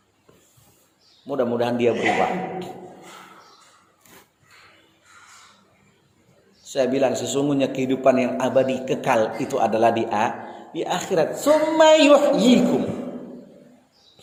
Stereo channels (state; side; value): identical; both; correlation 1.00